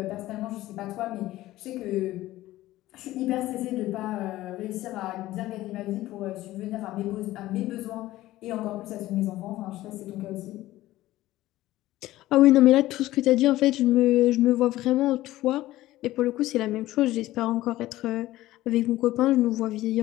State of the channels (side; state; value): right; quieter; 16.1 dB